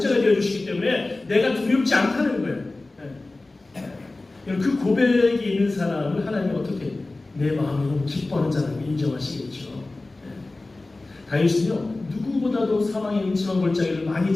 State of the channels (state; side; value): quieter; right; 3.1 dB